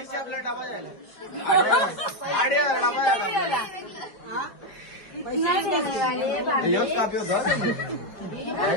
कितना देने वाले हैं भाभी?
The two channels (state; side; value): late; right; 4.8 ms